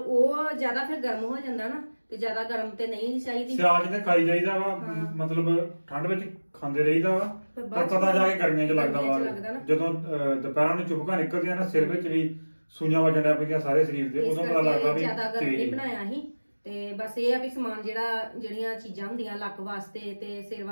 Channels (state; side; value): inverted; both; correlation -1.00